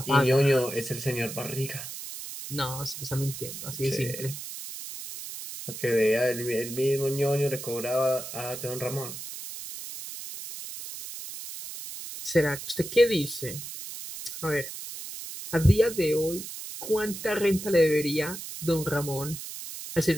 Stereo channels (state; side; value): noise; right; hiss, 10 dB below the sound